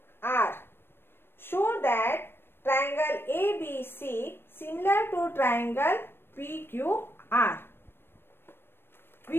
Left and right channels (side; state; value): right; late; 0.11 ms